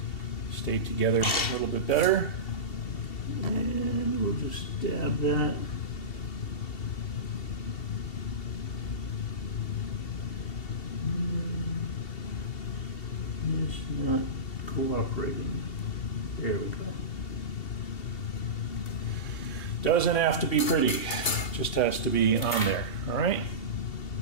together a little bit better. And we'll just dab that. It's not cooperating. There we go. Doesn't have to be pretty, just has to be on there, all right?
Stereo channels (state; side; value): late; right; 2.7 ms